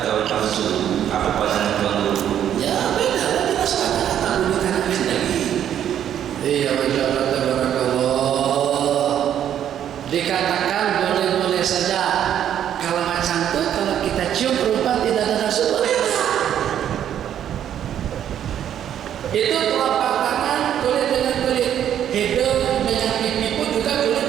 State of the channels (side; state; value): left; quieter; 10.1 dB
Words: nafsu. Apa pandangan tuan guru? Ya beda lah, kita sekarang tak gunakan lagi. Iya, barakallah. Dikatakan boleh-boleh saja. Kalau macam itu, kalau kita cium perempuan tidak ada nafsu, boleh tak? Itu telapak tangan kulit dengan kulit, hidung dengan pipi pun juga kulit